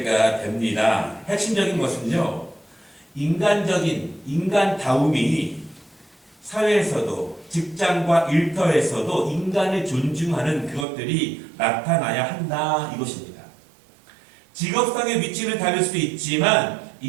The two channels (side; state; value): left; drops out; at 10.9 s